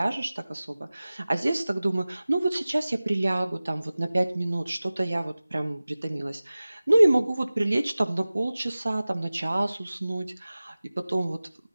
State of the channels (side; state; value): both; inverted; correlation -0.98